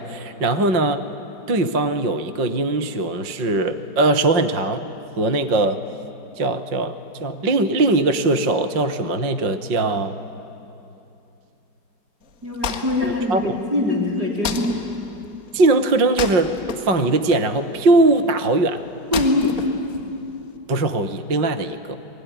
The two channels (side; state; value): left; late; 5.5 ms